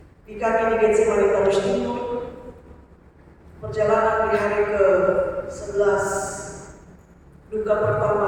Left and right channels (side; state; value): both; identical; correlation 1.00